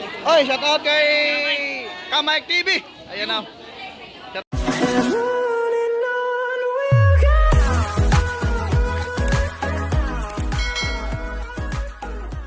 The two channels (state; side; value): identical; both; correlation 1.00